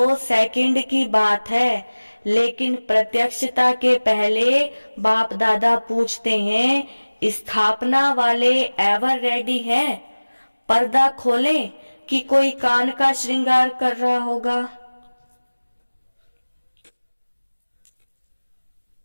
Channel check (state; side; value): inverted; both; correlation -1.00